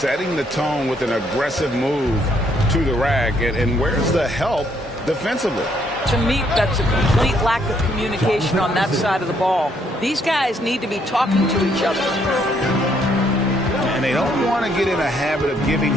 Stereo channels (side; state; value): both; normal; correlation 0.70